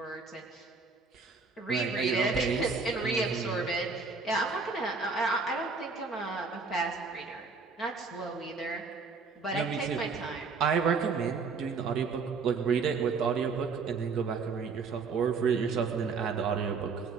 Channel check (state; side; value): quieter; left; 4.7 dB